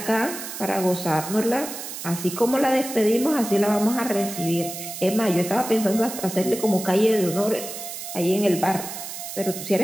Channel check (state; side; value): noise; right; hiss, 9 dB below the sound